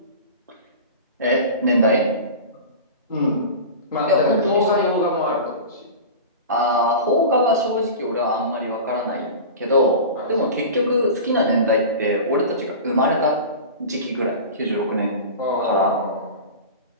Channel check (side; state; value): both; inverted; correlation -0.32